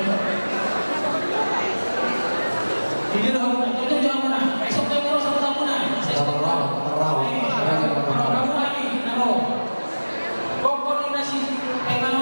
Hindi na ako na. Ito mo na. Isok tayo mo sa tampunan. Sa isok tayo. Raw namin. Ano? Kung na si kay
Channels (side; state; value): both; inverted; correlation -1.00